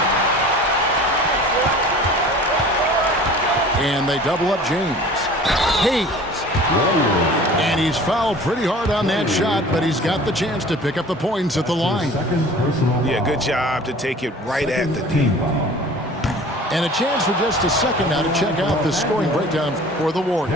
And they double up James. Hayes. And he's fouled pretty hard on that shot, but he's got the chance to pick up the points at the line. Yeah, good job to take it right at the D. And a chance for just a second now to check out the scoring breakdown for the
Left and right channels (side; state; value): both; normal; correlation 0.44